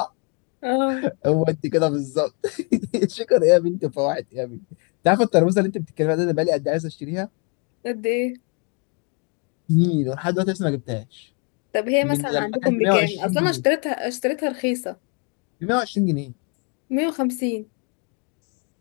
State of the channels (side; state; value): right; quieter; 35.0 dB